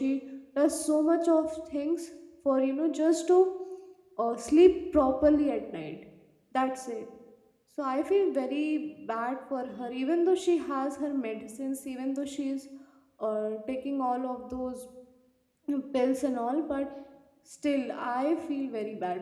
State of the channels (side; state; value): both; identical; correlation 1.00